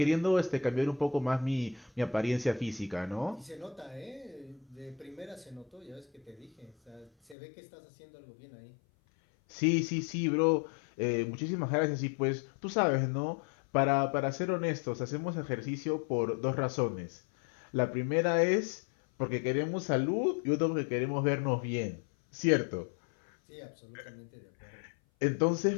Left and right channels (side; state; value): right; drops out; at 7.4 s